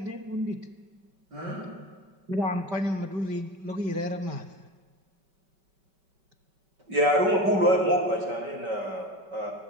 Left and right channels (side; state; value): left; late; 5.2 ms